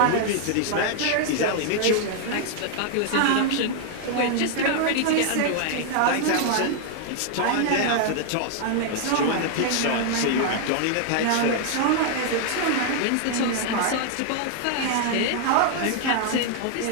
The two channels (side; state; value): both; different; correlation 0.00